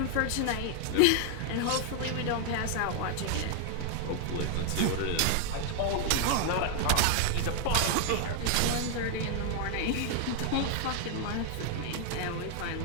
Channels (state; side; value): different; both; correlation 0.00